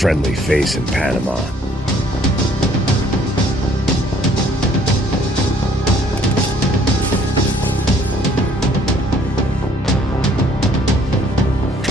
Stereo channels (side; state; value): both; normal; correlation 0.61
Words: face in Panama.